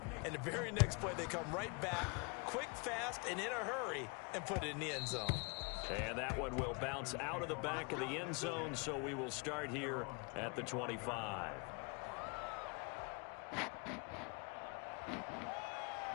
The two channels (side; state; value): right; quieter; 32.5 dB